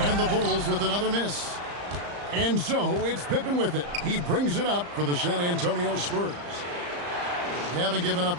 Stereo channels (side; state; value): left; late; 34 ms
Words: And the Bulls with another miss. And so it's Pippen with it. He brings it up for the San Antonio Spurs. They haven't given up